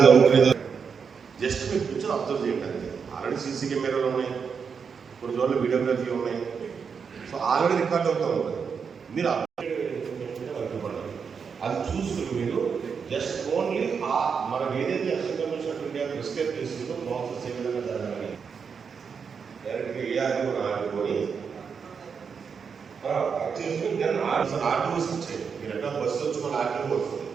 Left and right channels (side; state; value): left; quieter; 6.1 dB